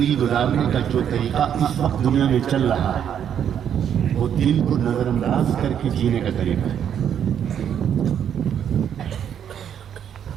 گزارنے کا جو طریقہ اس وقت دنیا میں چل رہا ہے وہ دل کو نظر انداز کر کے جینے کا طریقہ ہے.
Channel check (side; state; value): left; quieter; 9.0 dB